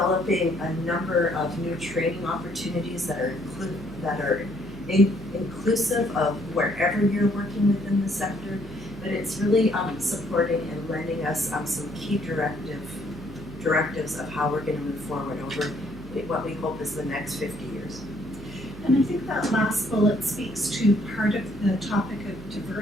a number of new training opportunities that are inclusive of wherever you're working within the sector, but it's really supporting and lending us some key directives of how we're going to move forward over what we hope is the next 50 years. And I think that last bullet speaks to part of the topic of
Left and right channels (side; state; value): right; noise; hum, 15 dB below the sound